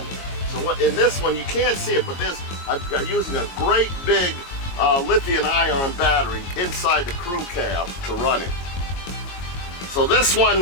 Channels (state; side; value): late; right; 22 ms